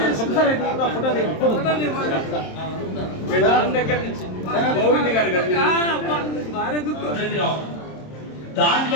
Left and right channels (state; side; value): late; right; 27 ms